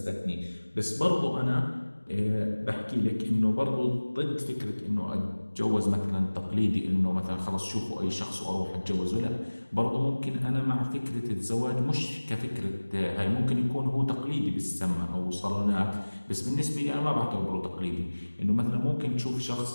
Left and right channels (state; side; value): inverted; both; correlation -1.00